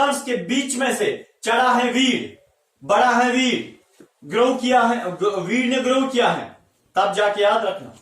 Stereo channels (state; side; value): identical; both; correlation 1.00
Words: के बीच में से चढ़ा है वीड, बड़ा है वीड, ग्रो किया है, वीड ने ग्रो किया है, तब जाके याद रखना